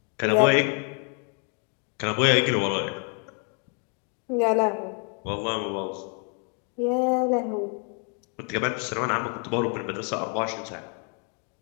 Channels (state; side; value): quieter; right; 38.9 dB